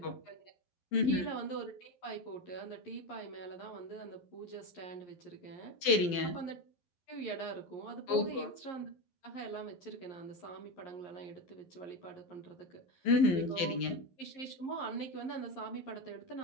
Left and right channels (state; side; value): late; right; 12 ms